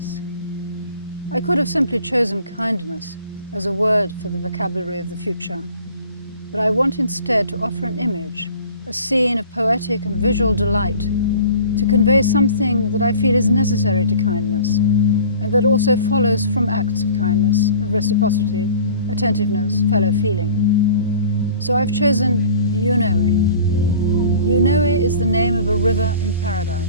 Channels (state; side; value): inverted; both; correlation -0.45